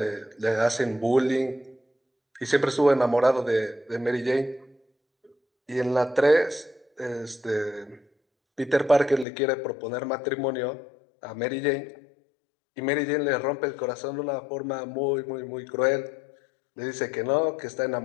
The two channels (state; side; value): drops out; right; at 9.2 s